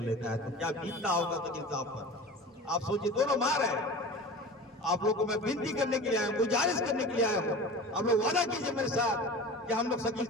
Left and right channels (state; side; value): normal; both; correlation 0.36